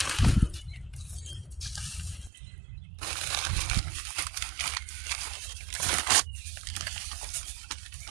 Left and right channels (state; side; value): drops out; left; at 2.3 s